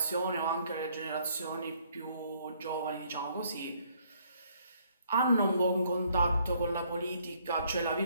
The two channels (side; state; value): both; inverted; correlation -0.66